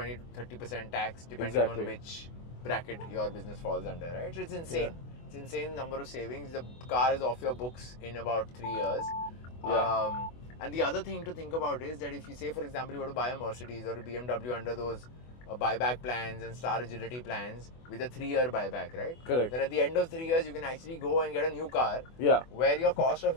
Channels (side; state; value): right; late; 24 ms